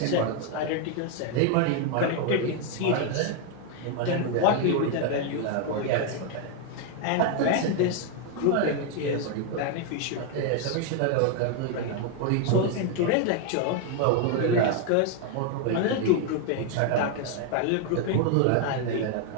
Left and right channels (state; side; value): different; both; correlation 0.01